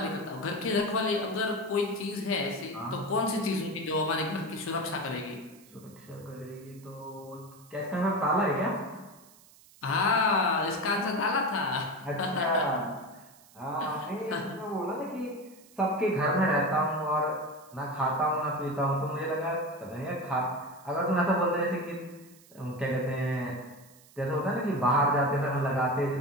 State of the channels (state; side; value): noise; right; hiss, 25 dB below the sound